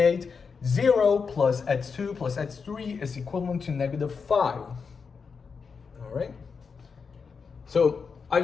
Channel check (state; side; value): quieter; right; 5.5 dB